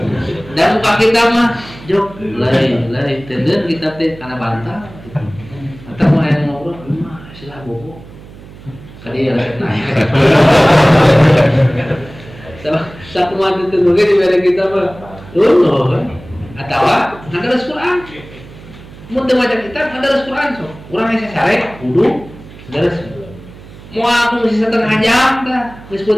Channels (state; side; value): noise; right; hum, 19 dB below the sound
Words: Dan muka kita mah jok lari tenden kita teh kana bantah. Atau mau yang ngobrol, mah silah bobo. Kali ya lagi naik. Satu mati tenggelam di beda kita mah, loh. Atau ada Quran. Mun teu maca kitab ada Quran so. Urang aya sare kudu dares. Mau aku ngisi setengah jam dah, geus